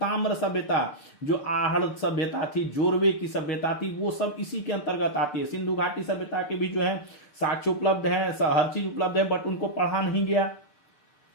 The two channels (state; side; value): late; right; 6.7 ms